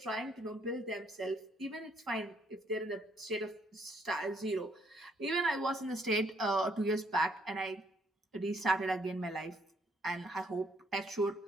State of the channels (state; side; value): normal; both; correlation 0.69